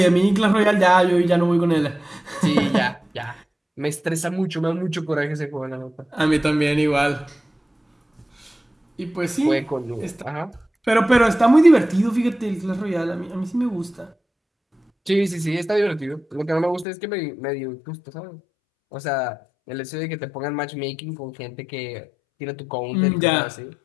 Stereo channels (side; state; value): right; drops out; at 16.9 s